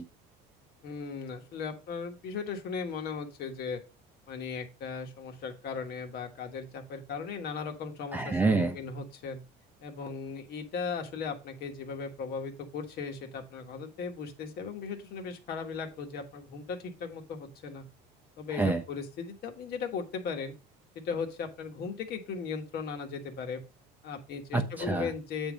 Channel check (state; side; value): normal; both; correlation 0.49